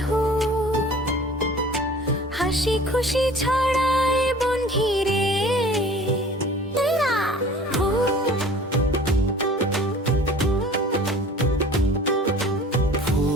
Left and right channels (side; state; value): both; normal; correlation 0.46